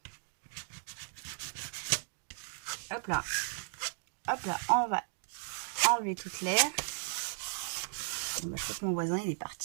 Hop là. Hop là, on va enlever toute l'air. Bon, je crois que mon voisin, il est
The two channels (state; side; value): silent; left; digital silence